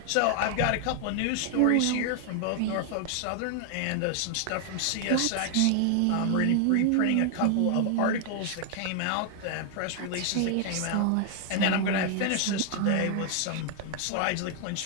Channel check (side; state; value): both; different; correlation 0.00